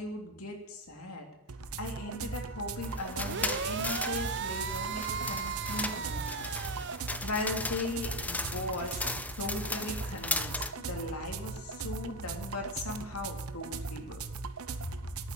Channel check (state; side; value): normal; both; correlation 0.11